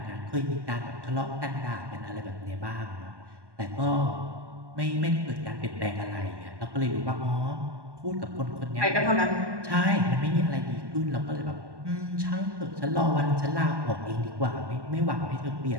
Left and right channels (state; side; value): late; left; 1.1 ms